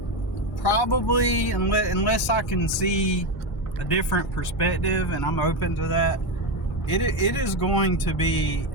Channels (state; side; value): normal; both; correlation 0.13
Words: probably, unless I can see a different perspective, and I'm open to that, it is going to be